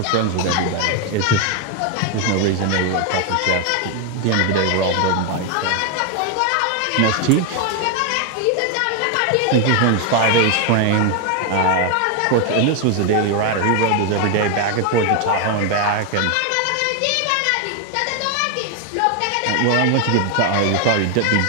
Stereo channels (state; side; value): different; both; correlation 0.01